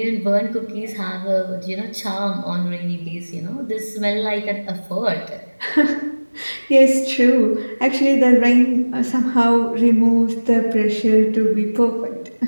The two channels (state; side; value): inverted; both; correlation -1.00